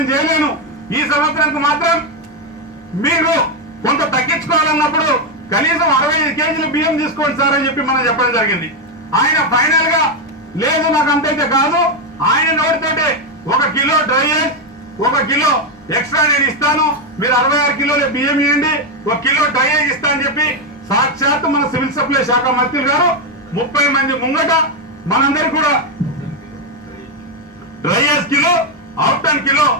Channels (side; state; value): both; normal; correlation 0.05